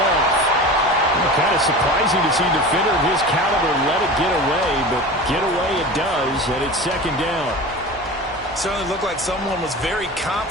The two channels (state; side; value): normal; both; correlation 0.33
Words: Kind of surprising to see a defender of his caliber let it get away, but get away it does, and it's 2nd down. Certainly looked like someone was very